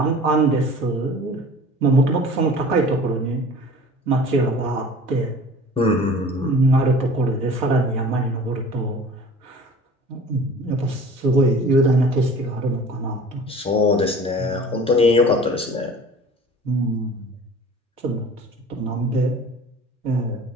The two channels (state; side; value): normal; both; correlation 0.44